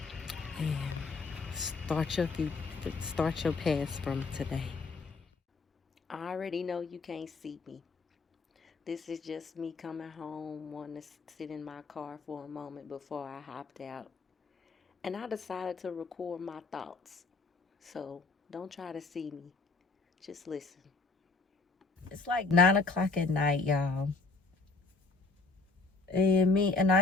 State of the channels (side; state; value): right; quieter; 3.9 dB